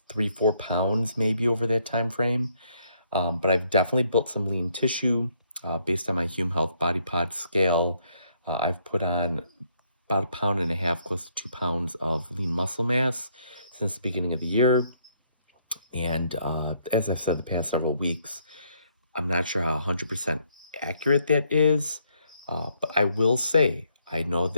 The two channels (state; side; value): inverted; both; correlation -0.71